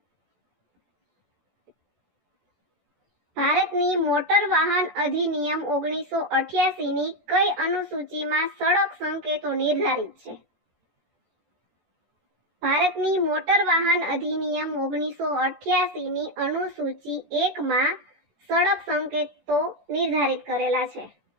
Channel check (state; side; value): late; left; 14 ms